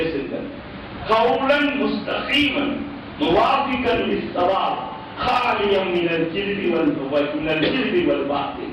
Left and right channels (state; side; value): identical; both; correlation 1.00